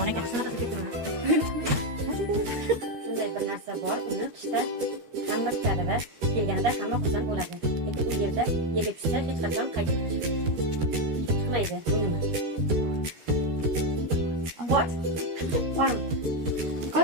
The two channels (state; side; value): late; left; 13 ms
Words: ekan. Shunaqa ketdimi? Shunday bir narsa bor, uni qishda hamma kutadi va kelganida hamma xursand bo'ladi. Lekin u yerda yerga tushsa hech qachon qaytib chiqmaydi. Bu nima? What? Bormi?